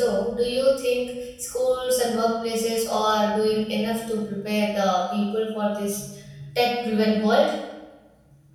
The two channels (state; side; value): identical; both; correlation 1.00